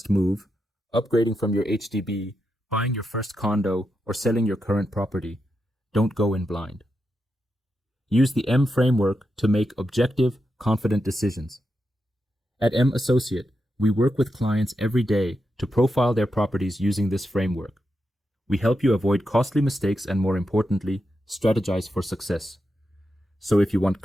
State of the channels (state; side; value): normal; both; correlation 0.86